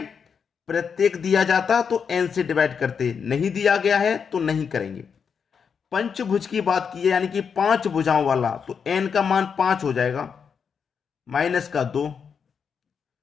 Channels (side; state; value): right; quieter; 6.5 dB